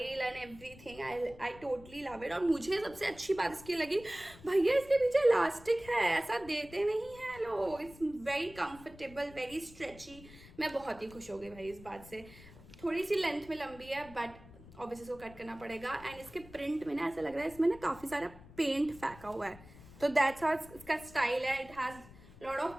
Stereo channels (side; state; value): left; noise; rumble, 19 dB below the sound